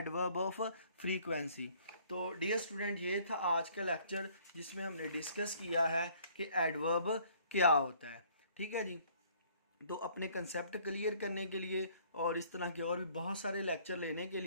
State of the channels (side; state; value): both; inverted; correlation -0.59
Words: ऑफ फ्रीक्वेंसी। तो डियर स्टूडेंट, ये था आज का लेक्चर जिसमें हमने डिस्कस किया है कि एडवर्ब क्या होता है, ठीक है जी। तो अपने कंसेप्ट क्लियर करने के लिए और इस तरह के और भी बहुत सारे लेक्चर लेने के